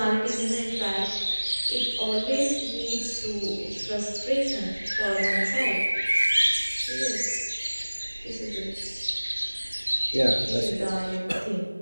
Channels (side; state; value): both; inverted; correlation -1.00